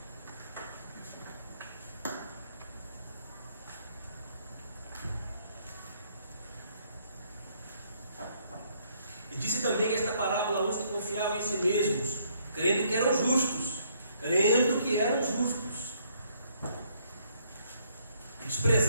E disse também esta parábola a uns que confiavam em si mesmos, crendo que eram justos,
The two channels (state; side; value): inverted; both; correlation -0.68